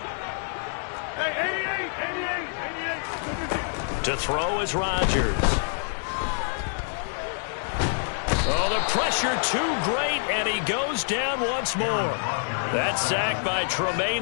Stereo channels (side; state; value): right; silent; digital silence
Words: To throw is Rodgers. Oh, the pressure too great, and he goes down once more. That sack by Tremaine